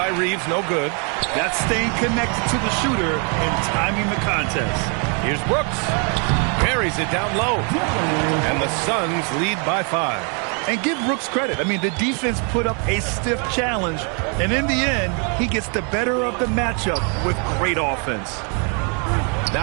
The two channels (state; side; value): quieter; left; 37.6 dB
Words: Reeves, no good. That's staying connected to the shooter and timing the contest. Here's Brooks. Carries it down low. And the Suns lead by 5. And give Brooks credit. I mean, the defense put up a stiff challenge. And in the end, he gets the better of the matchup with great offense.